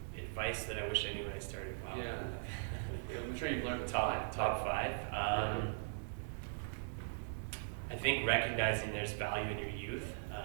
Advice that I wish I knew when I started. Wow. Yeah. I'm sure you've learned Top five. I think recognizing there's value in your youth.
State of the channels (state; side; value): silent; left; digital silence